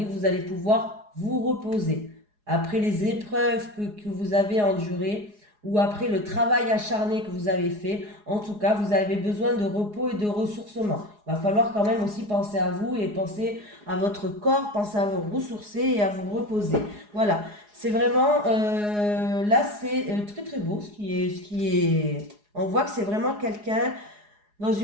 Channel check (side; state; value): left; late; 4.8 ms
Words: vous allez pouvoir vous reposer. Après les épreuves que vous avez endurées, ou après le travail acharné que vous avez fait, en tout cas, vous avez besoin de repos et de ressourcement. Il va falloir quand même aussi penser à vous et penser à votre corps, penser à vous ressourcer et à vous reposer. Voilà, c'est vraiment, là c'est très très beau ce qui est, on voit que c'est vraiment quelqu'un dans